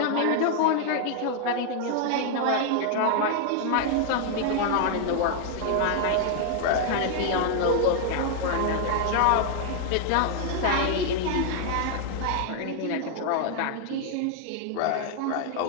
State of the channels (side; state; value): both; different; correlation 0.00